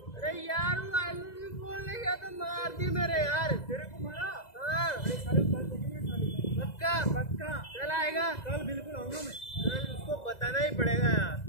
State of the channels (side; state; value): right; late; 2.0 ms